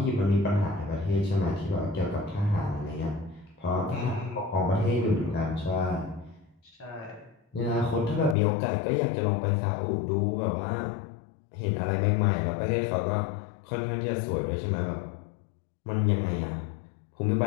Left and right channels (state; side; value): drops out; right; at 8.3 s